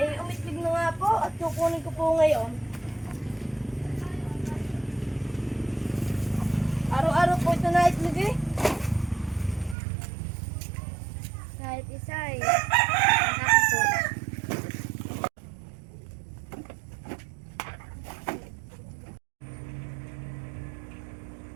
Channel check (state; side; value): drops out; left; at 9.8 s